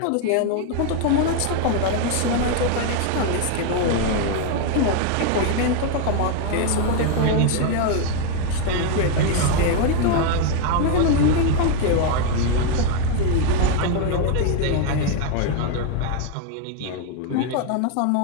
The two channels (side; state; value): both; different; correlation 0.01